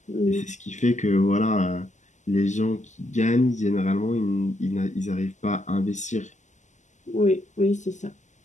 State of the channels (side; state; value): right; late; 0.34 ms